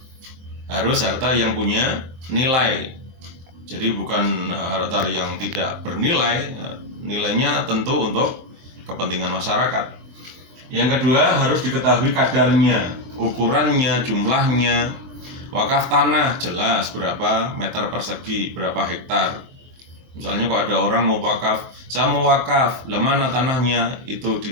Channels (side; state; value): left; late; 23 ms